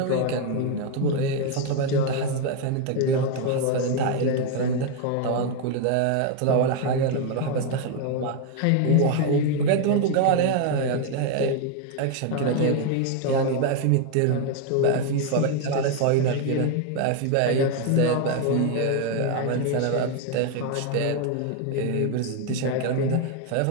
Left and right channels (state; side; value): different; both; correlation 0.01